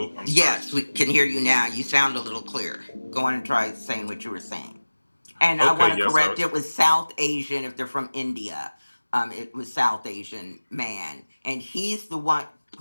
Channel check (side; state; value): both; inverted; correlation -1.00